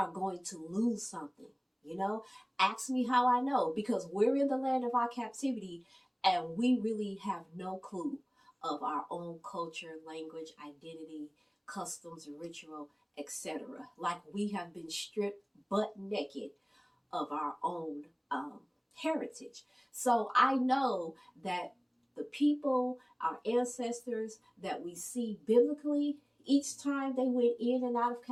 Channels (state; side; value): identical; both; correlation 1.00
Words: going to lose something. Ask me how I know, because we're in the land of our captivity and we really have no clue of our own culture, language, identity, customs, ritual, etc. Like we have been stripped butt naked of our own heritage. So I know that the people, our ancestors that we see biblically, each time they went in and out of